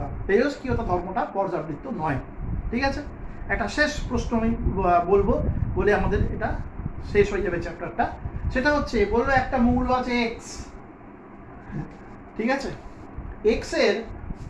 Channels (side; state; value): both; identical; correlation 1.00